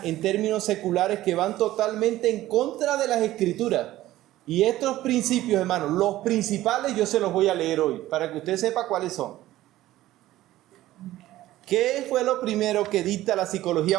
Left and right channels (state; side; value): quieter; left; 15.3 dB